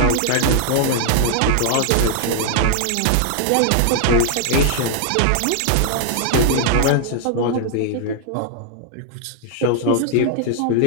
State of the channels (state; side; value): different; both; correlation 0.00